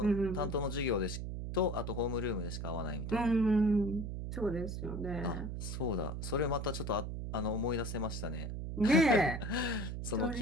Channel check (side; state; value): right; noise; hum, 5 dB below the sound